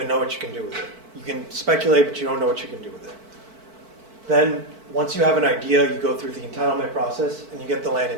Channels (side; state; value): left; late; 4.5 ms